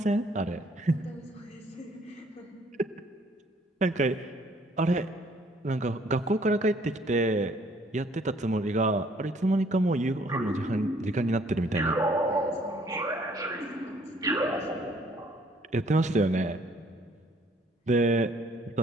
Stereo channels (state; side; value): normal; both; correlation 0.61